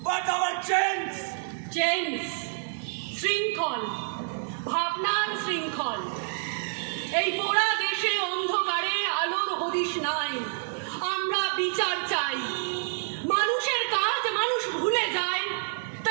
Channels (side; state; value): left; silent; digital silence